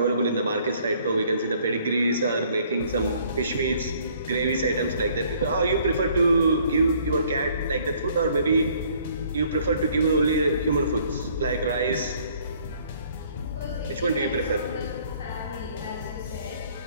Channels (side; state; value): both; inverted; correlation -0.60